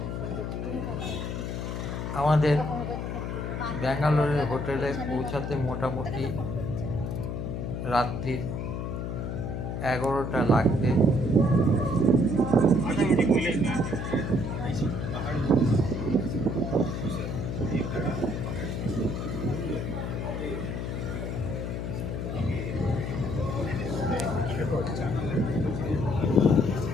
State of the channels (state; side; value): noise; left; hum, 3 dB below the sound